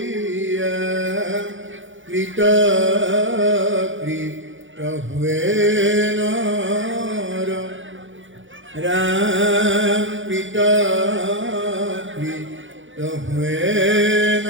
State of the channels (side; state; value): left; late; 0.56 ms